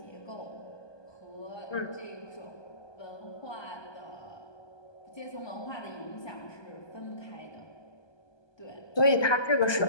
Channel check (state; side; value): late; right; 1.2 ms